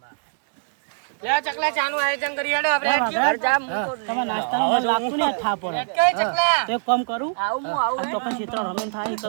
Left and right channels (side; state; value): left; silent; digital silence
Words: ચકલા ચાનું આયોજન કરી હેડો તમારા નાસ્તાનો મને લાગતું ને થા પડે તો એક કામ કરું આવું તો પણ ક્ષેત્ર રમેન થાય તો